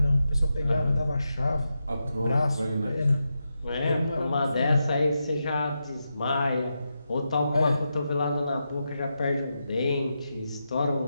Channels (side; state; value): both; inverted; correlation -0.87